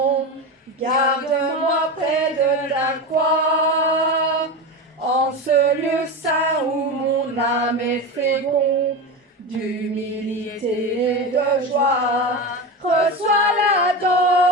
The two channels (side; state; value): both; normal; correlation 0.21